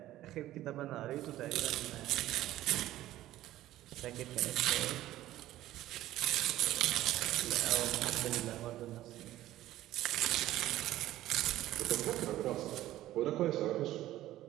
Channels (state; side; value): quieter; left; 14.6 dB